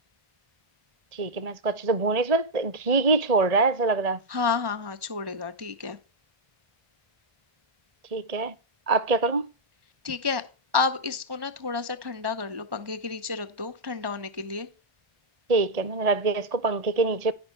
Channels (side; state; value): left; late; 1.1 ms